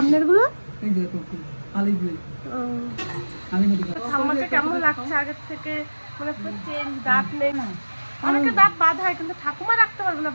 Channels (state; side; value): inverted; both; correlation -1.00